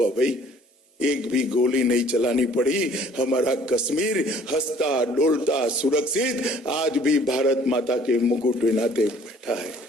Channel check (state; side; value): normal; both; correlation 0.56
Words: भाई? एक भी गोली नहीं चलानी पड़ी। हमारा कश्मीर हंसता डोलता सुरक्षित आज भी भारत माता के मुकुट नाते बैठा है।